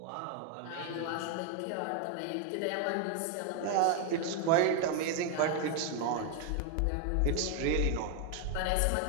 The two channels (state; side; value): different; both; correlation 0.01